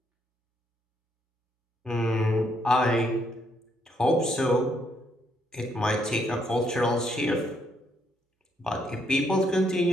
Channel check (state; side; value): normal; both; correlation 0.73